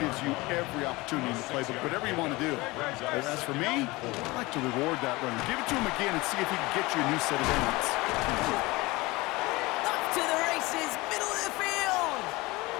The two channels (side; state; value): right; quieter; 22.0 dB